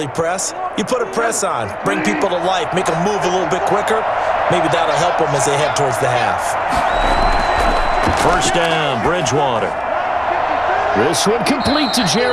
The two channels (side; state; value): both; identical; correlation 1.00